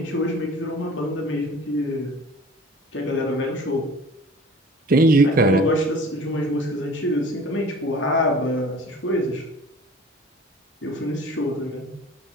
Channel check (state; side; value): normal; both; correlation 0.45